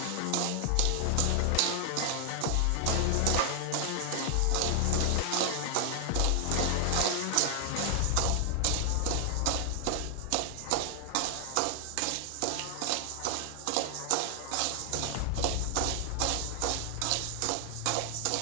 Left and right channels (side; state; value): both; different; correlation 0.00